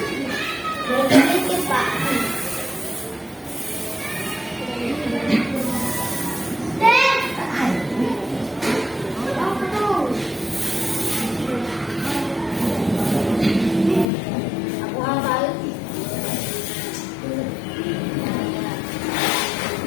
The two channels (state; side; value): drops out; right; at 14.1 s